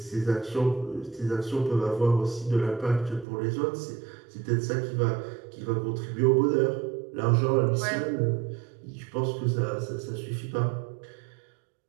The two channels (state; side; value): drops out; left; at 3.2 s